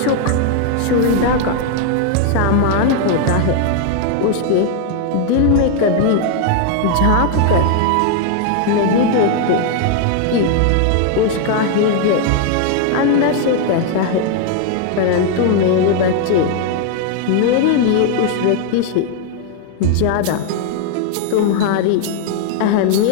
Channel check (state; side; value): different; both; correlation 0.00